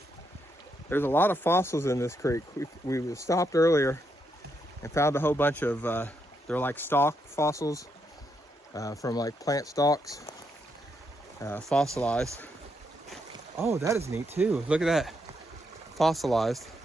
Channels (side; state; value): both; normal; correlation 0.79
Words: There's a lot of fossils in this creek. We stopped earlier and found a whole bunch of, they're like stalk fossils from like plant stalks, fossilized. Oh, that is neat too. Look at that, fossilized.